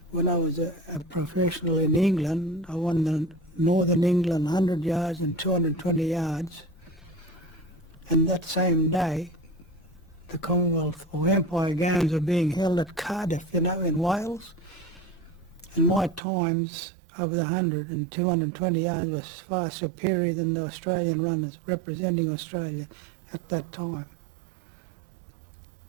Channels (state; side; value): drops out; left; at 16.2 s